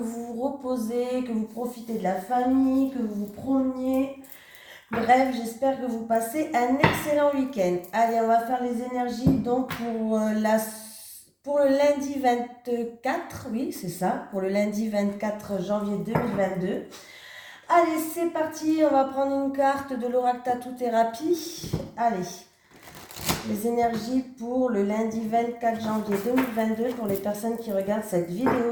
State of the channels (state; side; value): identical; both; correlation 1.00